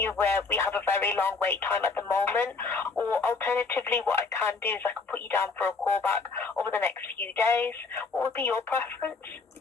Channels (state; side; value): quieter; right; 4.4 dB